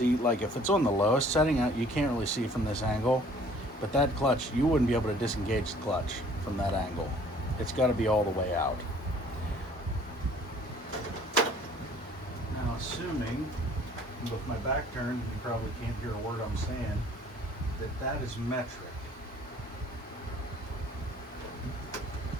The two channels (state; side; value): normal; both; correlation 0.55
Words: like if it's on the lowest setting, you can't really see from this angle, but that clutch, you wouldn't be able to disengage the clutch from that angle. It's got to be all the way out. Now, assuming, with my back turned, you probably can't hear a word I'm saying, that is metric.